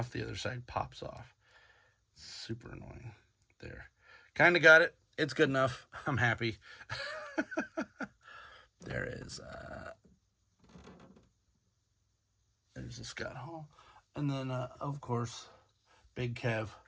the other side pops off. Super annoying. There. Kind of got it. It's good enough. I'm happy. There is there's a Scott Hall. And then, of course, Big Kev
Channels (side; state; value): both; identical; correlation 1.00